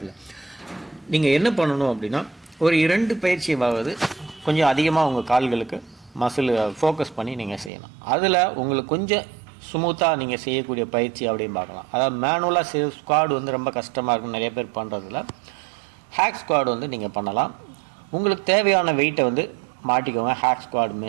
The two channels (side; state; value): left; drops out; at 7.7 s